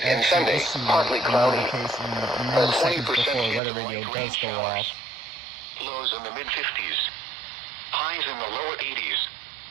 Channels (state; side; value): drops out; left; at 3.6 s